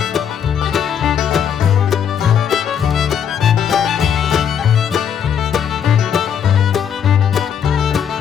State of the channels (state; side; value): quieter; right; 8.3 dB